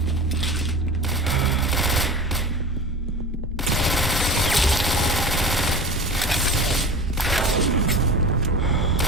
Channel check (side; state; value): both; normal; correlation 0.34